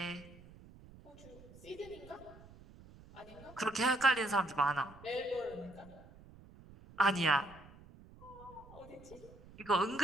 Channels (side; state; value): right; noise; rumble, 20 dB below the sound